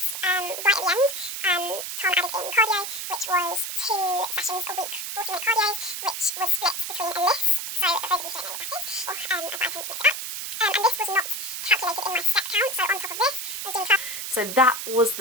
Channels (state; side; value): noise; right; hiss, 5 dB below the sound